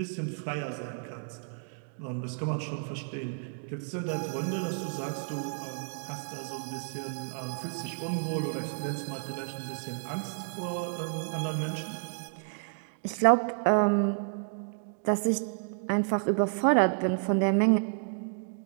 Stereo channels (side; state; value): left; silent; 57 dB below the other